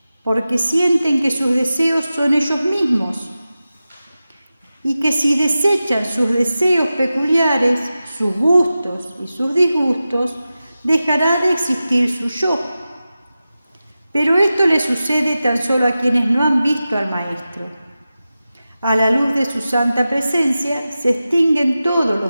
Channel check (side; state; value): both; inverted; correlation -0.94